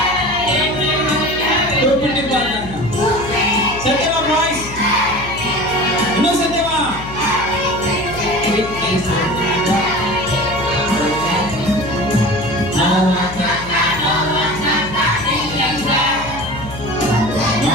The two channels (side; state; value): left; noise; hum, 13 dB below the sound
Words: Satyama boys. No Satyama.